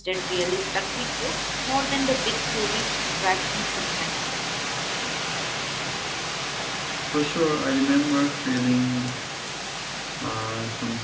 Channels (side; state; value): both; identical; correlation 1.00